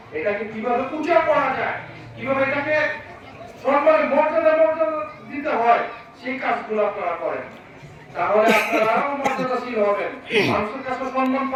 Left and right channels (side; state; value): both; identical; correlation 1.00